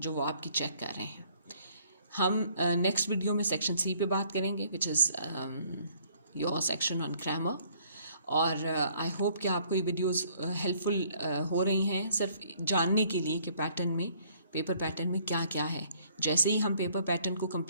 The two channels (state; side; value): inverted; both; correlation -0.62